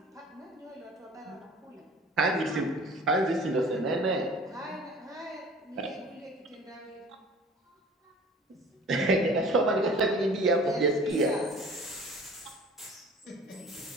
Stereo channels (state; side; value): normal; both; correlation 0.46